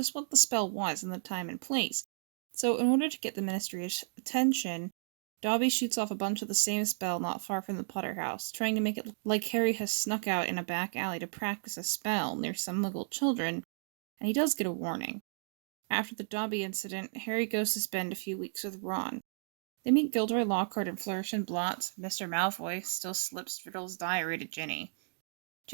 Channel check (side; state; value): left; silent; digital silence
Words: what the spell was and the time and place. So, in order to get the Ministry's attention, Dobby shoots off a bunch of the same spell not far from the Potter house, trying to make it look like Harry has snuck out in a back alley to practice a spell near some Muggle children, and he does get a warning. After the Dobby incident, Harry goes to spend a few weeks with Ron. They meet Gilderoy Lockhart and Flourish and Blotts. Mr. Malfoy still slips Riddle's diary to Ginny.